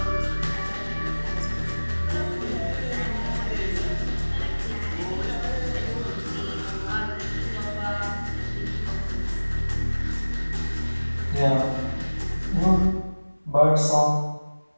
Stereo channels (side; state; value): both; inverted; correlation -1.00